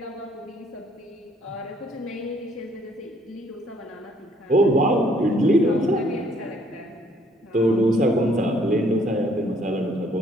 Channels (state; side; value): normal; both; correlation 0.64